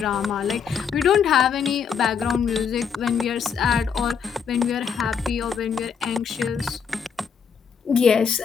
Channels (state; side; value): quieter; right; 6.7 dB